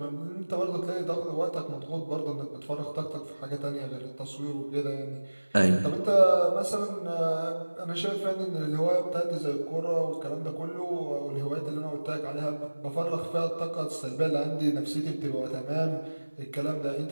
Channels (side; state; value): both; inverted; correlation -1.00